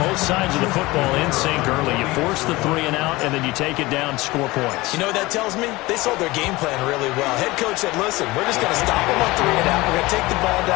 sides of the football in sync early. You force the 3 and out, and then you take it down, score points. You know what that tells me? They sold their game plan really well. Head coach said, listen, we're just going to stop them on 3 and out. We're going to take the ball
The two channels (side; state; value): right; quieter; 20.7 dB